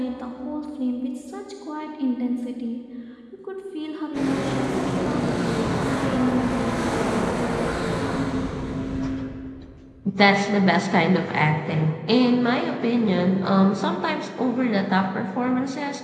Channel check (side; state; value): both; identical; correlation 1.00